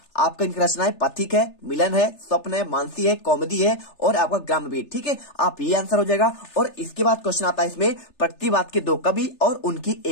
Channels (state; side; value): late; right; 3.3 ms